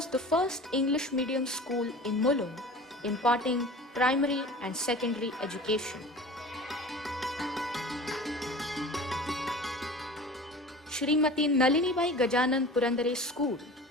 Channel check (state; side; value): normal; both; correlation 0.38